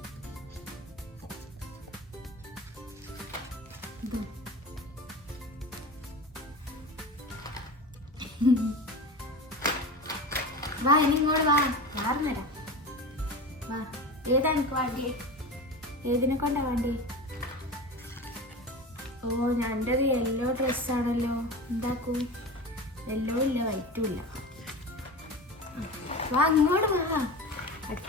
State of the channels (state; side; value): normal; both; correlation 0.30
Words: വാ, ഇനി ഇങ്ങോട്ട് വാ. മാറുന്നേരാ. വാ, ഏതാ എനിക്ക് വേണ്ടി? ഏതിനെ കൊണ്ടാ വേണ്ടി? ഓ, ഞൻ്റെത് യെല്ലോ ഡ്രസ്സാണല്ലോ. എന്താക്കൂ? യെല്ലോ ഇല്ല, വൈറ്റും ഇല്ല. വാ, ഇങ്ങോട്ട് വാ.